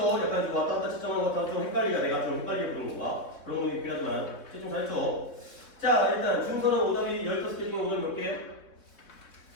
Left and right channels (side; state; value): right; late; 3.8 ms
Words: 약간 좀 왔다 갔다 채점하는 것 같아서 좀 헷갈리가 내가 좀 헷갈리게 부르는 건가? 그런 것도 있긴 하지만 채점 잘했죠? 자, 일단 준서는 오답이 15개 중에 오늘 몇 개요?